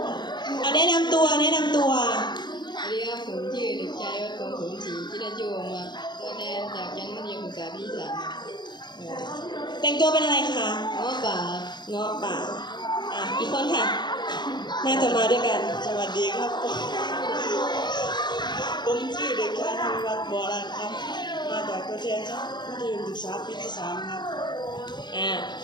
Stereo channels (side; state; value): right; late; 0.21 ms